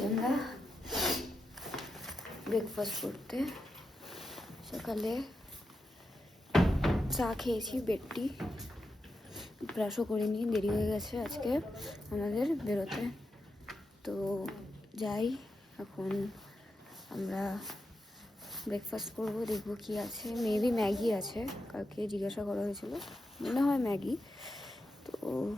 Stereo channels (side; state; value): both; normal; correlation 0.87